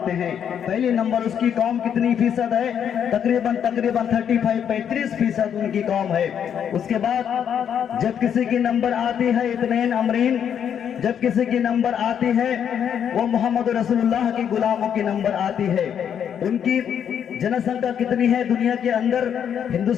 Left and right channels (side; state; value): right; quieter; 8.5 dB